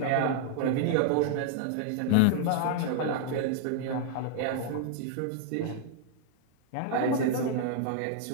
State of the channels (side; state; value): both; different; correlation 0.00